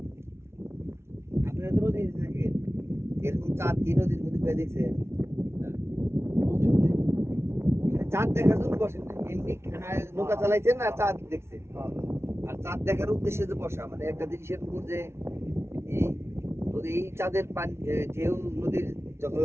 আপনারা তো নদীতে থাকেন, এরকম চাঁদ কি নদীর মধ্যে পেয়ে দেখছেন? চাঁদ দেখার জন্য বসেন না, এমনি নৌকা চালাইছেন আর চাঁদ দেখছেন। আর চাঁদ দেখার উদ্দেশ্যে যে বসা, মানে একটা জিনিসের উপর যে এই চাঁদের পানি ঢেউ নদীর যখন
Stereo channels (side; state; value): left; late; 0.13 ms